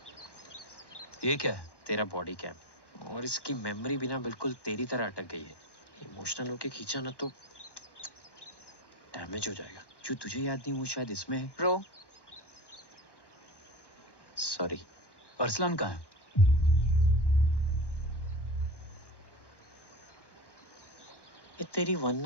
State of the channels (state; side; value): late; right; 1.1 ms